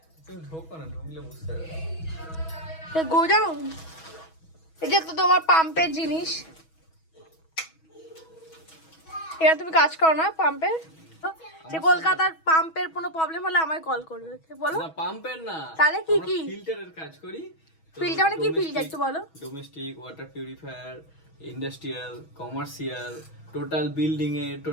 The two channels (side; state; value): right; late; 6.2 ms